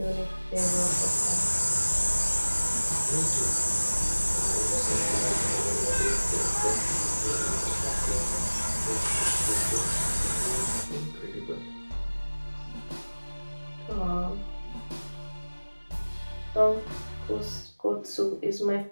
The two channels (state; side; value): inverted; both; correlation -1.00